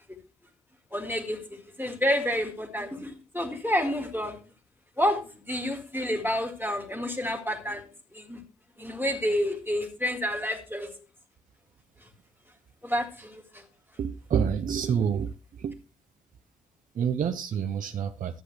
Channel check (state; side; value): normal; both; correlation 0.70